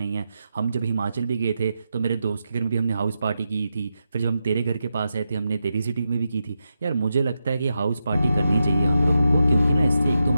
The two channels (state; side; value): inverted; both; correlation -0.88